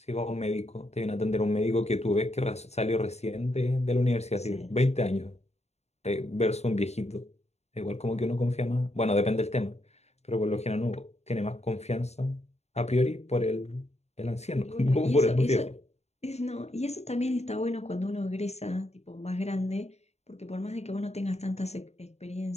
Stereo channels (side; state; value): right; late; 0.31 ms